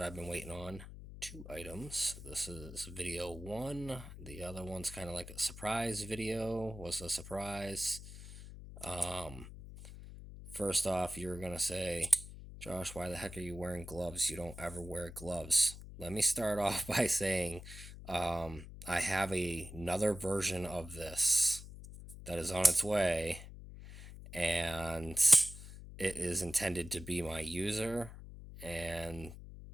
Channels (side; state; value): left; noise; hum, 13 dB below the sound